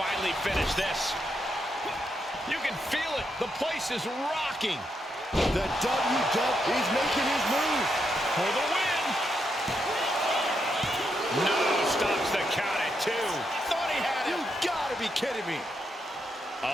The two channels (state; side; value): normal; both; correlation 0.81